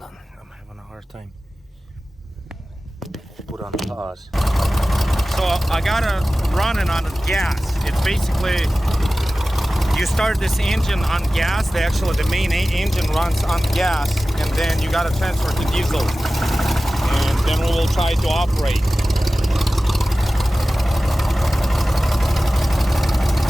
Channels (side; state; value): both; normal; correlation 0.96